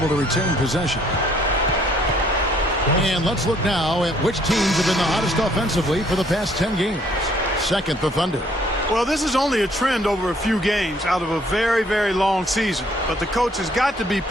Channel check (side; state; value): both; normal; correlation 0.63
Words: to retain possession. And let's look now at which teams have been the hottest offensively for the past 10 games. Second, the Thunder. Well, this is only a trend over a few games out of a very, very long season. But the coach has got to be